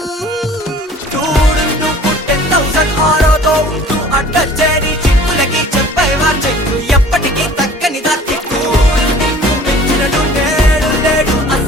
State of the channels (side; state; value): both; normal; correlation 0.48